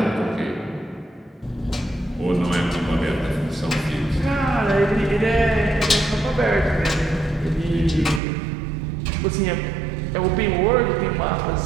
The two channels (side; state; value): left; drops out; at 8.2 s